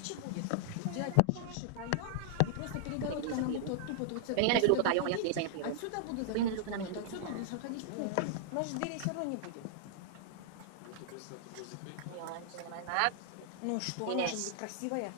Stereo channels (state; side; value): different; both; correlation -0.01